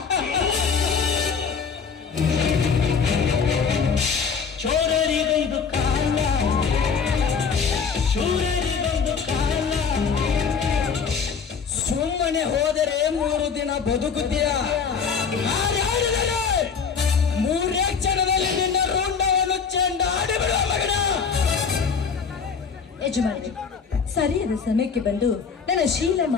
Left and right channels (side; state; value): right; quieter; 5.9 dB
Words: ಚೋರರಿಗೊಂದು ಕಾಲ, ಶೂರರಿಗೊಂದು ಕಾಲ. ಸುಮ್ಮನೆ ಹೋದರೆ 3 ದಿನ ಬದುಕುತ್ತೀಯ. ಮೂರೇ ಕ್ಷಣದಲ್ಲಿ ನಿನ್ನ ರುಂಡವನ್ನು ಚೆಂಡಾಡಿ ಬಿಡುವ ಮಗನ. ಯಜಮಾನಿ, ಸರಿಯಾದ ಸಮಯಕ್ಕೆ ಬಂದು ನನ್ನ